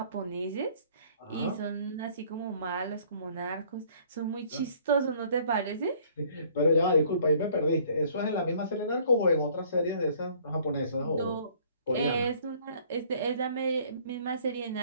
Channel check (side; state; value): both; inverted; correlation -0.57